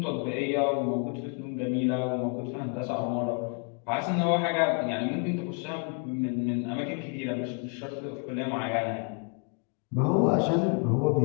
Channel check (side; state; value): right; quieter; 37.3 dB